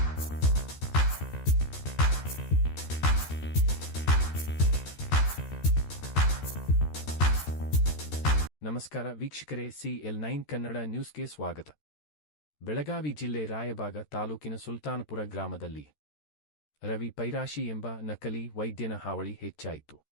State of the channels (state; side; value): late; right; 13 ms